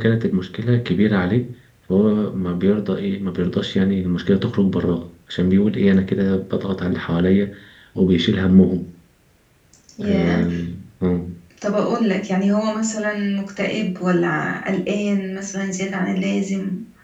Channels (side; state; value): both; identical; correlation 1.00